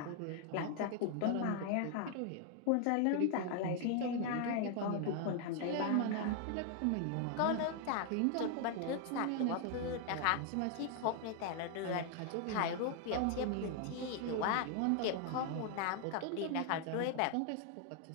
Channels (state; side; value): different; both; correlation 0.00